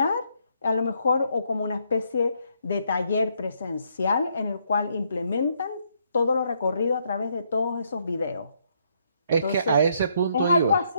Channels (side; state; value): both; inverted; correlation -0.73